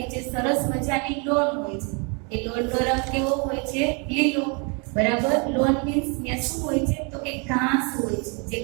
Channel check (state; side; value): quieter; left; 34.5 dB